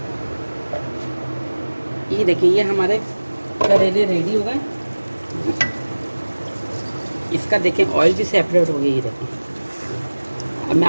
ये देखिए, ये हमारे करेले रेडी हो गए। इसका देखें ऑयल भी सेपरेट हो गया। ये देखिए, अब मैं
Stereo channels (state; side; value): inverted; both; correlation -1.00